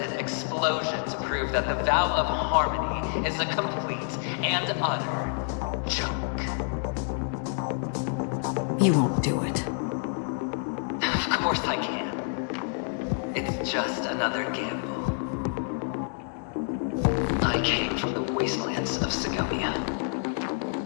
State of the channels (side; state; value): right; silent; 56 dB below the other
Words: explosion to prove that the vow of harmony is a complete and utter joke. You won't do it. Of course I can. It's just another gamble. I came from the wastelands of Sigonia.